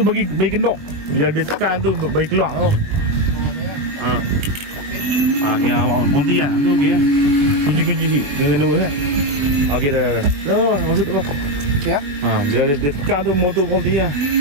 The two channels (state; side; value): late; left; 21 ms